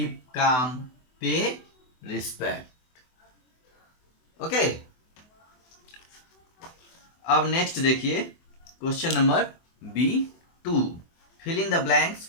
calm, pay respect, okay. अब नेक्स्ट देखिए question number B2, fill in the blanks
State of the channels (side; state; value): right; late; 24 ms